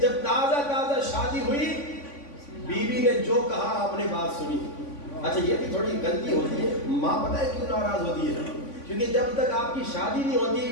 تازہ شادی ہوئی بیوی نے جو کہا آپ نے بات سنی. اچھا یہ بھی تھوڑی غلطی ہوتی ہے, ماں پتہ ہے کیوں ناراض ہوتی ہے, کیونکہ جب تک آپ کی شادی نہیں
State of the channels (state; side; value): late; right; 3.5 ms